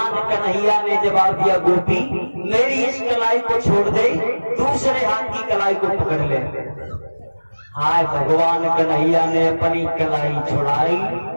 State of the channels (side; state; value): both; inverted; correlation -1.00